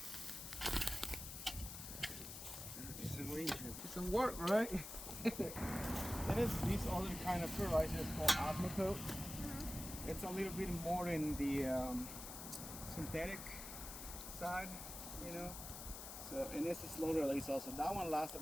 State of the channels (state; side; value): noise; left; hiss, 9 dB below the sound